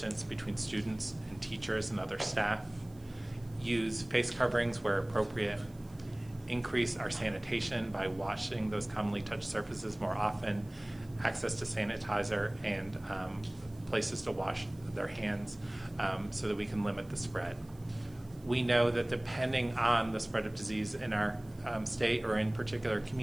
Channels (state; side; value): noise; right; hiss, 27 dB below the sound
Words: between students and teachers and other staff? Use face coverings where appropriate, increase our sanitation by washing those commonly touched surfaces more often, access to sanitizer and places to wash their hands so that we can limit the spread. We know that depending on the spread of disease in our state or in particular